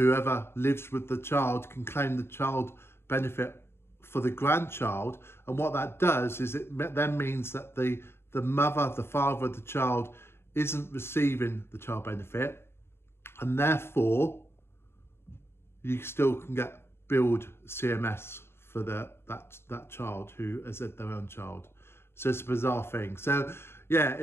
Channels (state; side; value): late; right; 0.12 ms